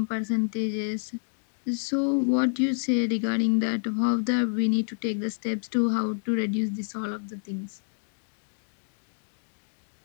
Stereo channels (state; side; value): silent; right; digital silence